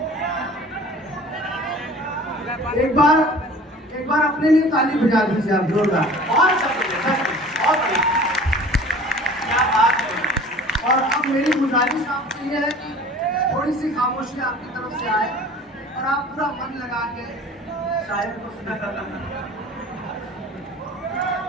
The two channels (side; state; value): both; normal; correlation 0.45